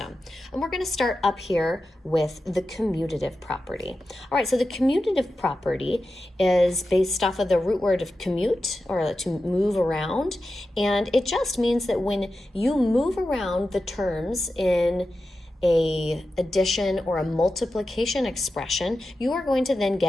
And we're going to start up here with the commutative property. All right, so the commutative property is based off of the root word of commute, or to move around. And it just means that when you move around the terms in a addition or a multiplication expression, you are going to then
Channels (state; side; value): normal; both; correlation 0.92